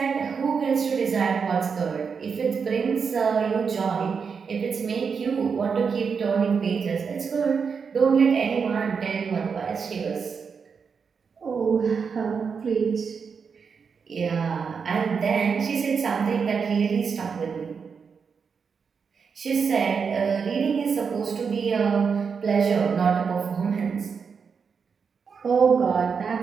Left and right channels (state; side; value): quieter; left; 5.9 dB